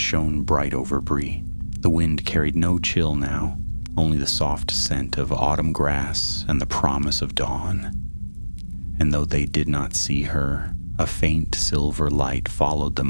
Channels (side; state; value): both; inverted; correlation -1.00